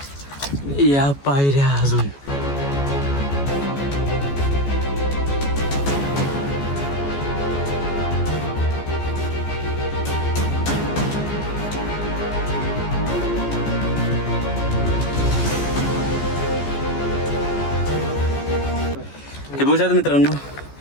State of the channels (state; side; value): late; right; 14 ms